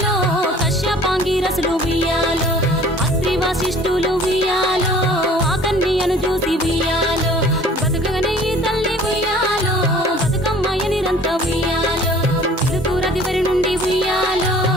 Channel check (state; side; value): normal; both; correlation 0.50